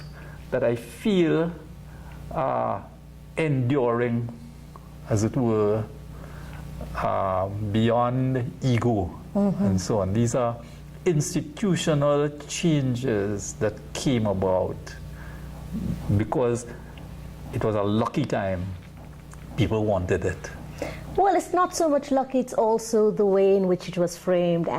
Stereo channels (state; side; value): identical; both; correlation 1.00